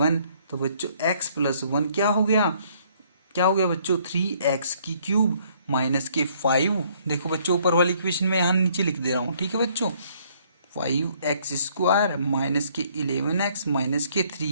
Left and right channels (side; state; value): both; inverted; correlation -0.63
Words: तो बच्चों x + 1 क्या हो गया, क्या हो गया बच्चों, 3x³ -5। देखो बच्चों ऊपर वाली इक्वेशन में यहाँ नीचे लिख दे रहा हूँ। ठीक है बच्चों, 5x² -11x